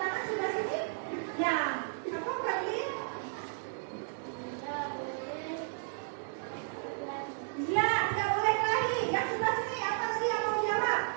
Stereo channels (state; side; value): silent; left; digital silence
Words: sebelah sini? Ya, apa Fadli? Tidak boleh. Iya, tidak boleh kelahi. Yang sebelah sini apa tadi yang mau jawab?